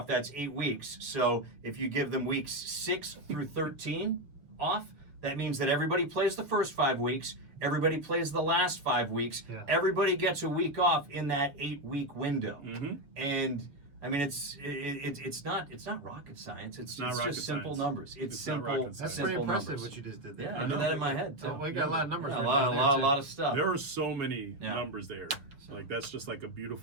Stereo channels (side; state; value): left; late; 6.8 ms